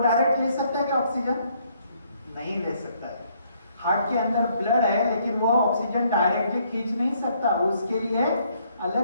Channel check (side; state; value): both; inverted; correlation -0.68